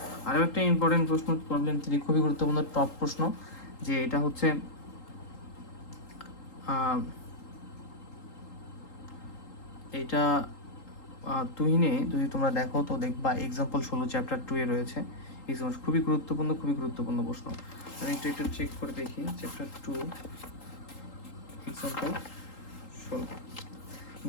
আরও একটা ইম্পর্টেন্ট প্রশ্ন প্রবলেম 3, খুবই গুরুত্বপূর্ণ টপ প্রশ্ন, যে এটা হচ্ছে এটা তুহিনে যদি তোমরা দেখো তো দেখবা এক্সাম্পল 16 চ্যাপ্টার 2 এ রয়েছে। এক্সাম্পল খুবই গুরুত্বপূর্ণ প্রশ্ন। আমি একটু চেক করে দেখি, চ্যাপ্টার 2 এক্সাম্পল 16।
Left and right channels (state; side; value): late; right; 3.8 ms